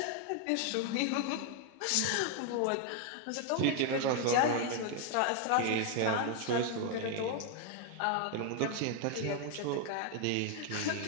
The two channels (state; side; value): different; both; correlation 0.01